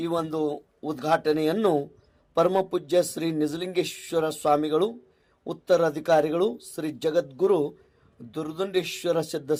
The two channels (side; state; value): both; identical; correlation 1.00